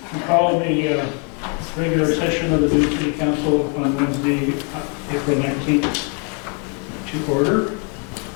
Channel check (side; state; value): right; quieter; 37.3 dB